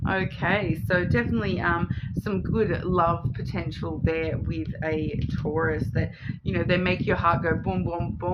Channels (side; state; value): both; identical; correlation 1.00